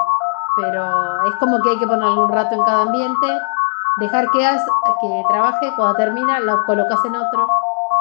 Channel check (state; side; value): silent; right; digital silence